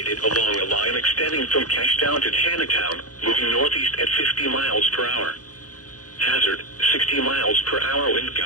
along a line extending from Cashtown to Taneytown, moving northeast at 50 miles per hour. Hazard, 60 miles per hour wind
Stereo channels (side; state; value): right; late; 0.68 ms